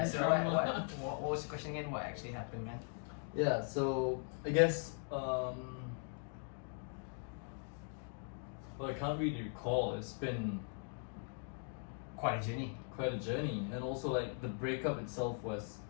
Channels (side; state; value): right; silent; 51 dB below the other